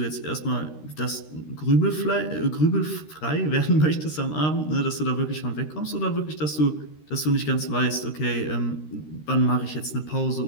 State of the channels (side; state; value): right; late; 13 ms